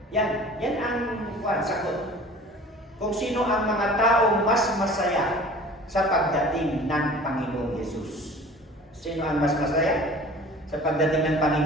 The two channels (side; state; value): both; normal; correlation 0.44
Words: Yan ang sagot. Kung sino ang mga taong mas masaya sa pagdating ng Panginoong Hesus. Sino ang mas masaya sa pagdating ng